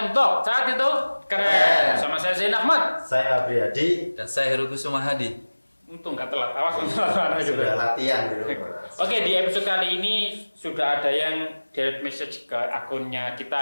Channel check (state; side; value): inverted; both; correlation -1.00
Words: Talk. Saat itu keren. Sama saya Zain Ahmad. Saya Abriyadi. Dan saya Heru Kusuma Hadi. Untung gak telat. Awas telat gitu. Sudah latihan dulu. Oke, di episode kali ini sudah ada yang direct message ke akunnya kita